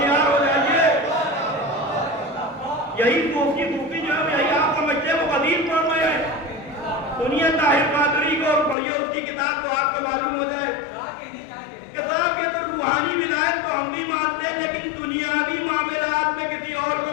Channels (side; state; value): right; drops out; at 8.8 s